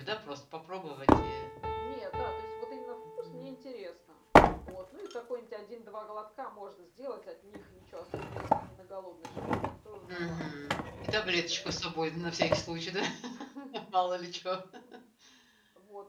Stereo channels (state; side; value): identical; both; correlation 1.00